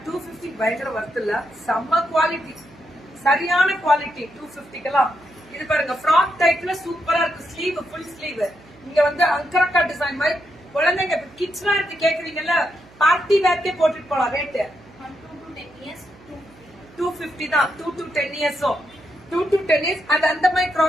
250 பயங்கர வர்த் இல்ல, செம்ம குவாலிட்டி, சரியான குவாலிட்டி 250க்குலாம். இது பாருங்க ஃப்ராக் டைப்ல சூப்பரா இருக்கு. Sleeve full sleeve. இங்க வந்து அங்கரக்கா டிசைன் மாதிரி குழந்தைங்க கிட்ஸ் வேர் கேக்குறீங்கல்ல, பார்ட்டி வேர்க்கே போட்டுட்டு போலாம். ரேட் 250 தான். 2 to 10 years 2 to 10 years அது அந்த மாதிரி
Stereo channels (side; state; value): right; noise; hum, 25 dB below the sound